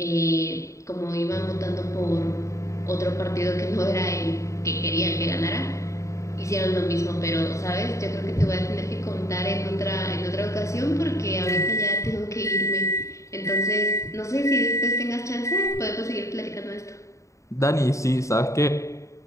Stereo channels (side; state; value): right; late; 0.15 ms